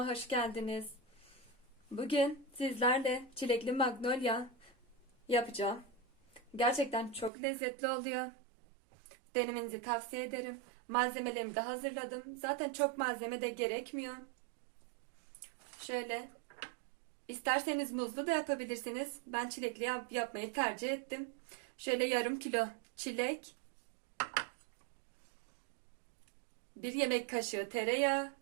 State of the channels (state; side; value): drops out; left; at 7.3 s